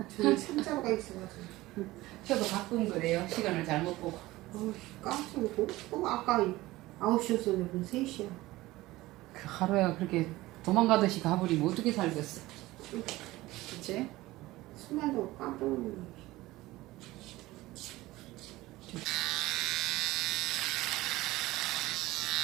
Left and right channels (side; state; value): left; quieter; 18.3 dB